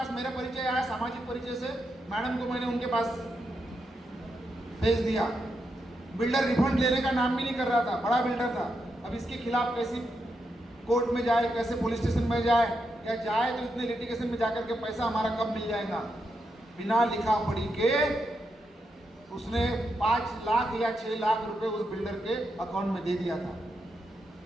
मेरा परिचय आया, सामाजिक परिचय से मैडम को मैंने उनके पास भेज दिया। बिल्डर रिफंड लेने का नाम भी नहीं कर रहा था, बड़ा बिल्डर था। अब इसके खिलाफ कैसी कोर्ट में जाए, कैसे पुलिस स्टेशन में जाए, या जाए तो इतने लिटिगेशन में जाकर के पैसा हमारा कब मिल जाएगा। बिना लिखा पढ़ी के उसने 5 लाख या 6 लाख रुपए उस बिल्डर के अकाउंट में दे दिया था।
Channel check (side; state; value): both; normal; correlation 0.84